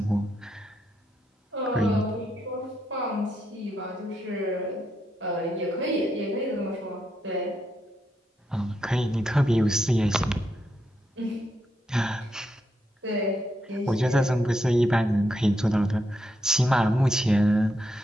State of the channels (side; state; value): both; normal; correlation 0.81